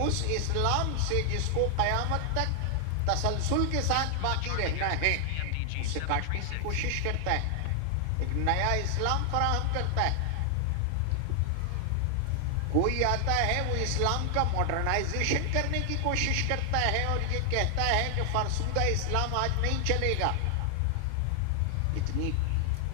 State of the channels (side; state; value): both; different; correlation 0.00